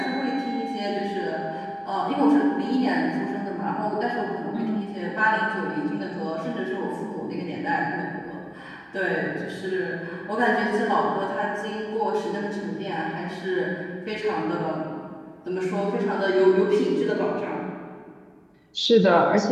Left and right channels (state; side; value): identical; both; correlation 1.00